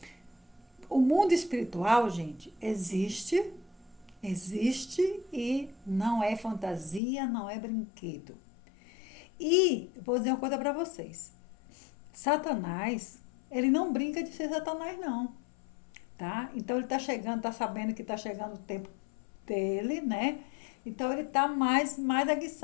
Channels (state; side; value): drops out; right; at 7.0 s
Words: o mundo espiritual, gente, existe e não é fantasia, não é brinquedo. E vou dizer uma coisa para vocês. Satanás, ele não brinca de ser Satanás, não. Tá? Então ele está chegando, está sabendo que está chegando o tempo dele, né? Então ele está mais